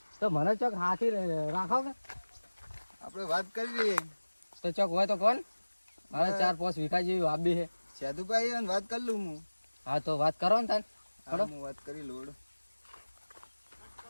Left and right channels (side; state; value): both; inverted; correlation -1.00